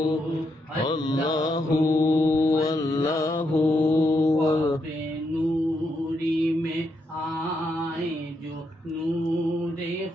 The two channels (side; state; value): both; normal; correlation 0.80